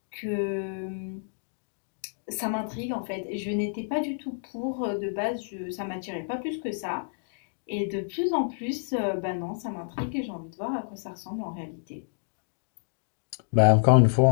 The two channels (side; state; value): right; silent; digital silence